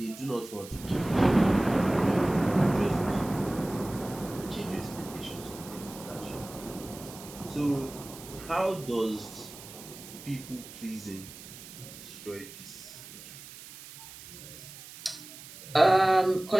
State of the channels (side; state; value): right; noise; hiss, 16 dB below the sound